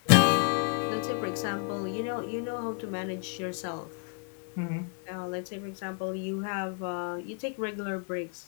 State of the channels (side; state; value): right; quieter; 38.6 dB